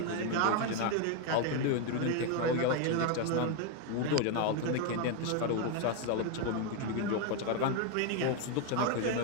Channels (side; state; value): both; different; correlation 0.01